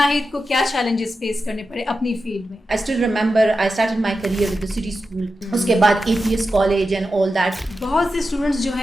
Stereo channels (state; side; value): normal; both; correlation 0.90